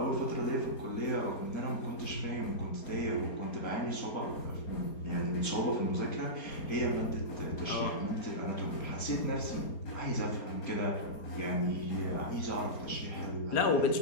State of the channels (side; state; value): right; late; 4.3 ms